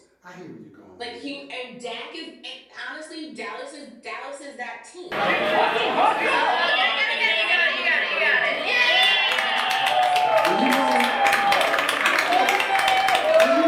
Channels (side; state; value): both; identical; correlation 1.00